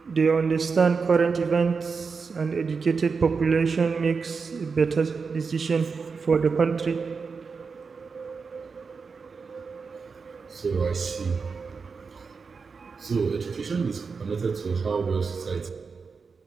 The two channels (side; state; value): left; quieter; 5.1 dB